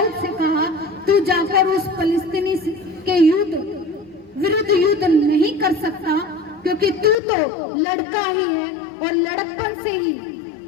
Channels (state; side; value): drops out; right; at 7.2 s